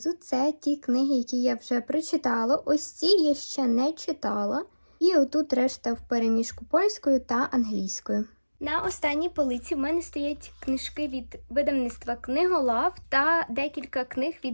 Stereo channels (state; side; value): inverted; both; correlation -1.00